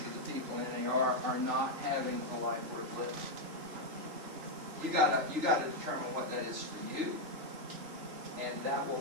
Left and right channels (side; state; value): left; late; 3.4 ms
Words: the people in NAR are not having a life worth living. You gotta determine what that is for you, and that